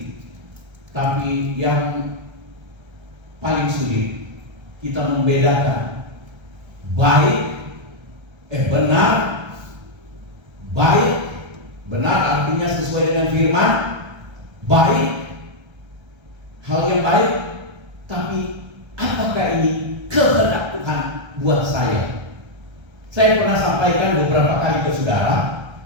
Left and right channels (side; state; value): left; late; 1.3 ms